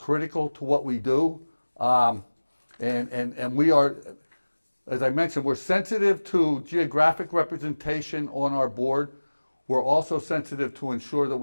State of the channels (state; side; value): inverted; both; correlation -1.00